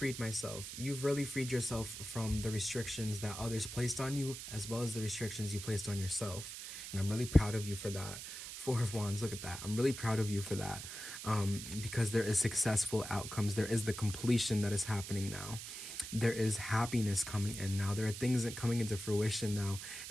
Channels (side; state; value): right; noise; hiss, 9 dB below the sound